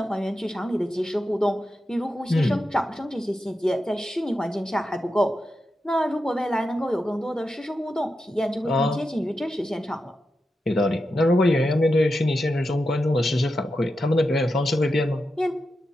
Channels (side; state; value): both; normal; correlation 0.89